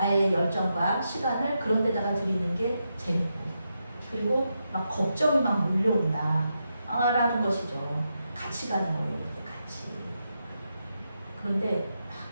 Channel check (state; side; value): inverted; both; correlation -0.85